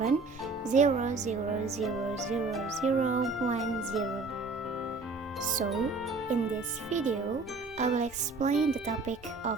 So, in this video, I will explain the topic of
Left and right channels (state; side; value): quieter; left; 3.7 dB